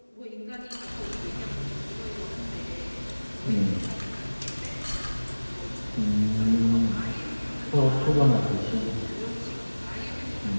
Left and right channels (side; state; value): both; inverted; correlation -1.00